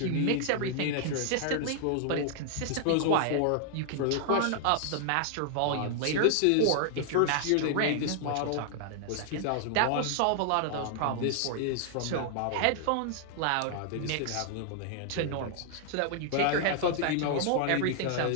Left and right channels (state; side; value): different; both; correlation 0.00